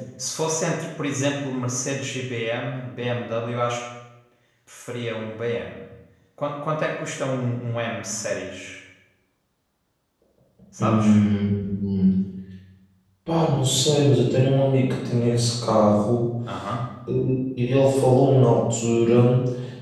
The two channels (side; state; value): both; identical; correlation 1.00